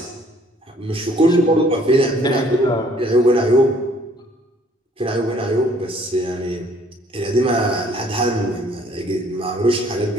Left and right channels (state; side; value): normal; both; correlation 0.60